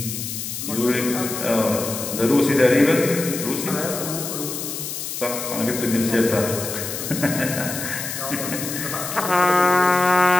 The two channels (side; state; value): left; noise; hiss, 6 dB below the sound